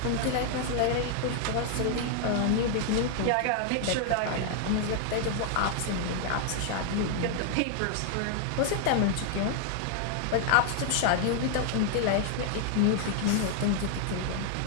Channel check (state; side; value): different; both; correlation 0.00